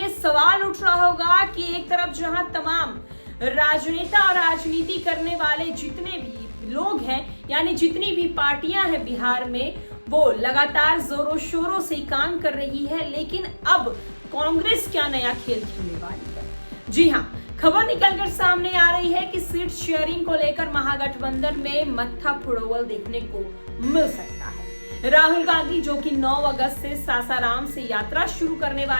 सवाल उठ रहा होगा कि एक तरफ जहां तमाम राजनेता और राजनीति करने वाले जितने भी लोग हैं, यानी जितनी भी पार्टियां हैं बिहार में, वो लगातार जोरों शोरों से काम कर रही है, लेकिन अब कांग्रेस क्या नया खेल खेलने वाली है। जी हाँ, खबर निकलकर सामने आ रही है कि सीट शेयरिंग को लेकर महागठबंधन में मत्था फुड़ोवल देखने को मिल सकता है। राहुल गांधी जो कि 9 अगस्त से सासाराम से यात्रा शुरू करने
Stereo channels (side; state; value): both; inverted; correlation -1.00